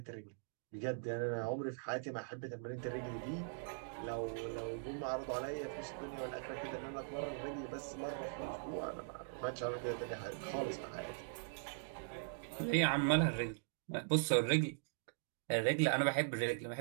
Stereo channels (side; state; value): left; silent; digital silence